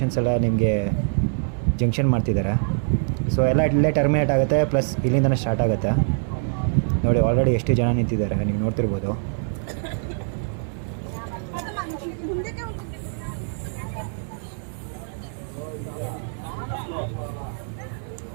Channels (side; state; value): left; silent; 62 dB below the other